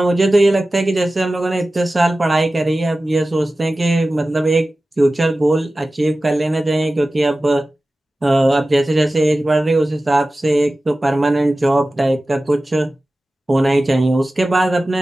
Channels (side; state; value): both; normal; correlation 0.96